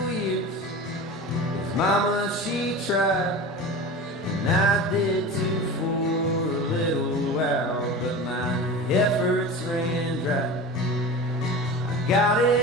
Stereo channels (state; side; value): normal; both; correlation 0.31